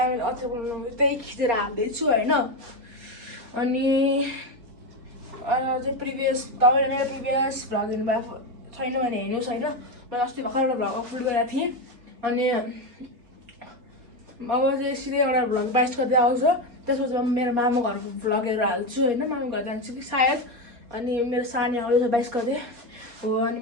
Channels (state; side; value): late; left; 4.3 ms